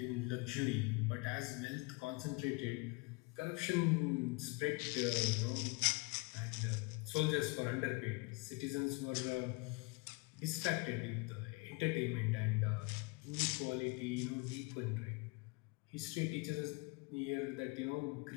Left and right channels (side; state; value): right; quieter; 27.7 dB